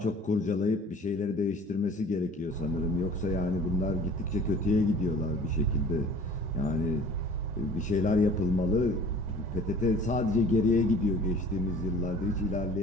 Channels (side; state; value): both; normal; correlation 0.48